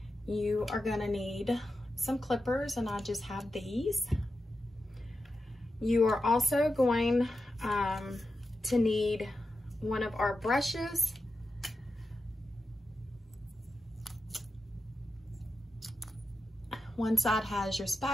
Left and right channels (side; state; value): both; normal; correlation 0.90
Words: You are going to need some clippers, and I just have these. You are also going to need one of our brushes. One side has your